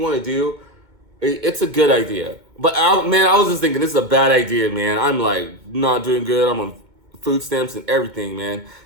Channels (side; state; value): left; late; 2.2 ms